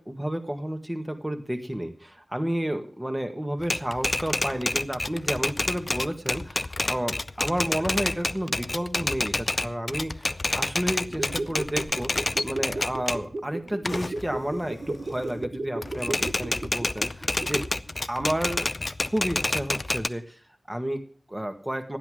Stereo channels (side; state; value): both; normal; correlation 0.98